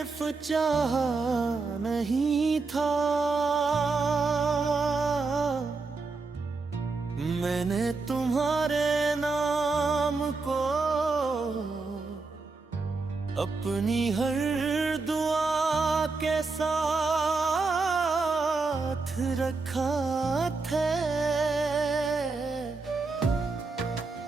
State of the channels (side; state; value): left; quieter; 4.0 dB